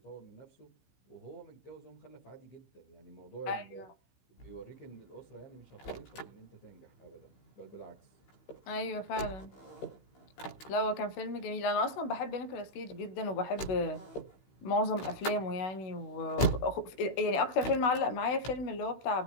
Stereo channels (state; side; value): late; right; 15 ms